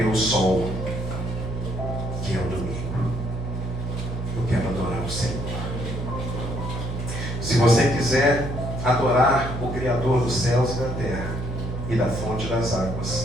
sol, que é o domingo. Eu quero adorar o Senhor. Se você quiser adorar o Criador dos céus e da terra e da fonte das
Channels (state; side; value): noise; right; hum, 5 dB below the sound